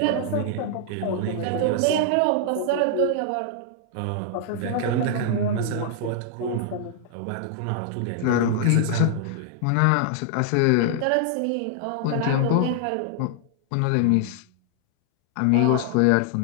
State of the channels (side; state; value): both; different; correlation -0.01